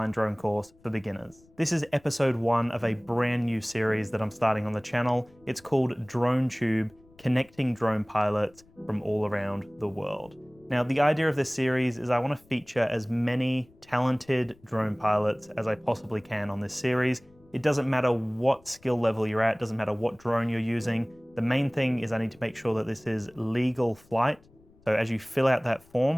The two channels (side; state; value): left; noise; rumble, 29 dB below the sound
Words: drone course for beginners. This is episode 1 of a brand new series that I'm starting on the channel. It's called DroneTube, Connecting Drone Pilots from all around the world. Now, the idea of this series is I want to feature as many talented drone pilots as I possibly can on this series. It doesn't matter what skill level you're at, doesn't matter what drone you're using. The main thing is I need to make sure that this is legal flight. So as you fill out that